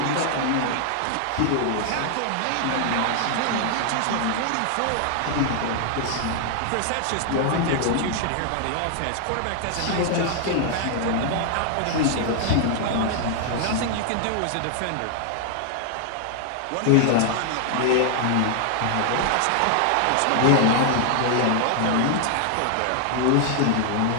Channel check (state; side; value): different; both; correlation 0.00